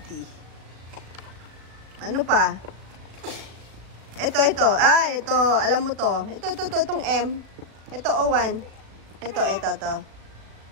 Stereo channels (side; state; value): left; late; 36 ms